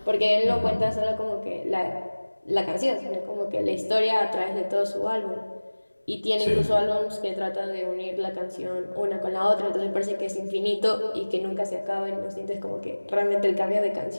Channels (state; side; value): inverted; both; correlation -1.00